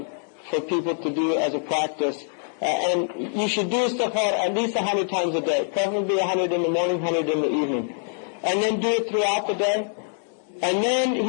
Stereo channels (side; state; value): right; silent; 62 dB below the other